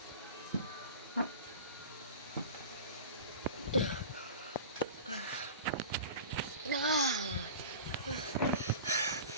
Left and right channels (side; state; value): both; inverted; correlation -0.35